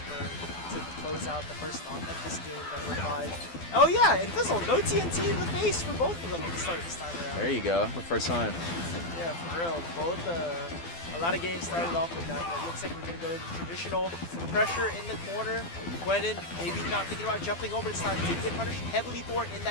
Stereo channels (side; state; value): right; late; 12 ms